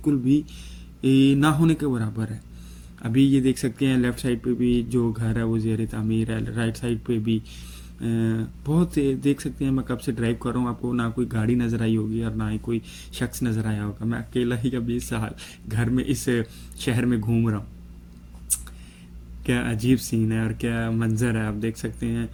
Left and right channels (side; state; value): both; identical; correlation 1.00